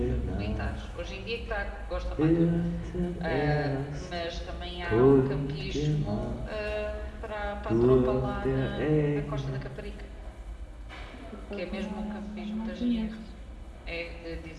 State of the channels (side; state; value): both; identical; correlation 1.00